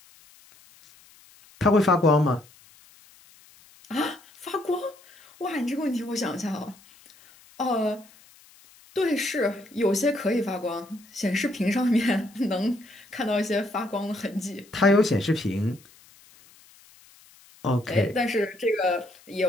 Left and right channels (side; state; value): left; noise; hiss, 26 dB below the sound